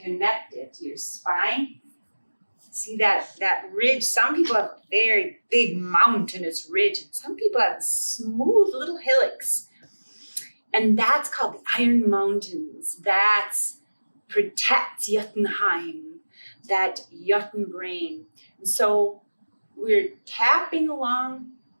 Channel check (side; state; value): both; inverted; correlation -1.00